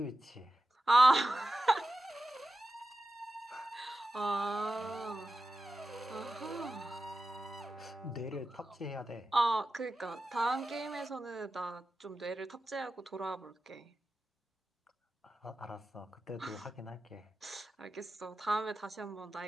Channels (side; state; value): both; normal; correlation 0.93